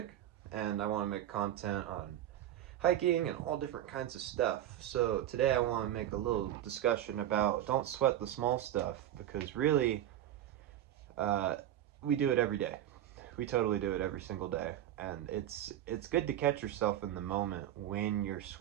and I want to make content on hiking and all different kinds of stuff. So today I want to make a little discussion about don't sweat the small stuff, because really uh, we do it every day. We totally do it every single day, and it's good to catch yourself in the moment when you're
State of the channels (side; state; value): left; quieter; 12.1 dB